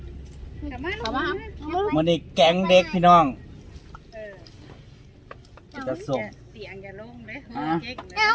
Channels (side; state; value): both; identical; correlation 1.00